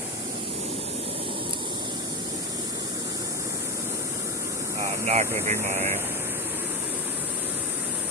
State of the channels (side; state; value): both; normal; correlation 0.16